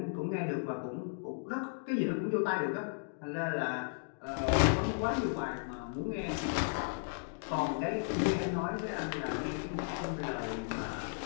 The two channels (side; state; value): right; silent; digital silence